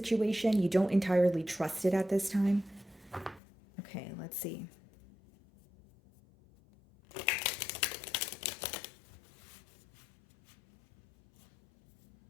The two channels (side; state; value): right; drops out; at 3.4 s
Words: You don't entirely trust it at this time. Okay, let's see.